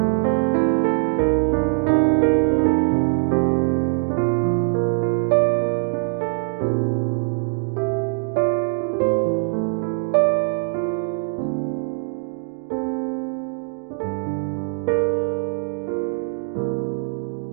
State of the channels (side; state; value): left; silent; 64 dB below the other